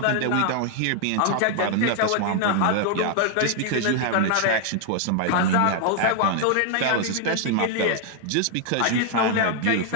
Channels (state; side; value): different; both; correlation 0.00